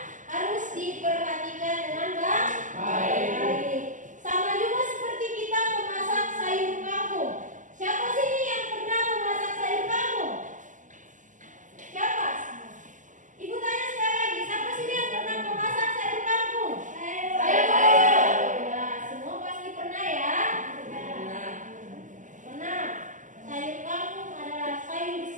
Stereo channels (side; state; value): left; late; 0.37 ms